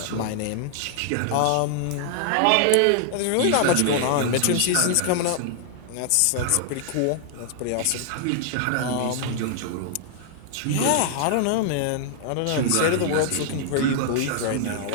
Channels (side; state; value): both; different; correlation -0.01